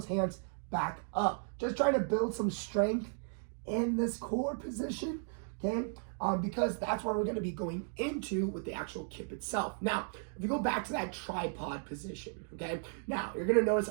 hands back up. Just trying to build some strength in this core position, okay? Because that's where we're going to be going into with the actual kip itself. Now, if you go back to that tripod position, okay? Now, you're going to notice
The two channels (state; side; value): silent; left; 54 dB below the other